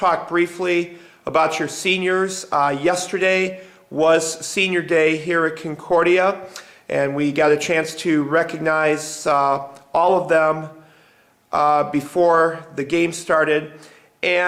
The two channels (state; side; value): identical; both; correlation 1.00